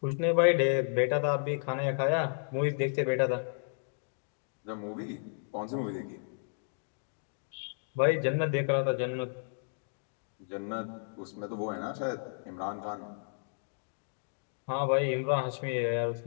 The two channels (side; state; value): right; silent; digital silence